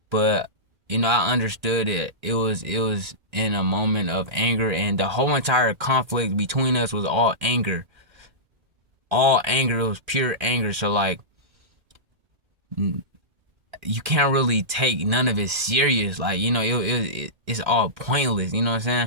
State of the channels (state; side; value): late; left; 1.8 ms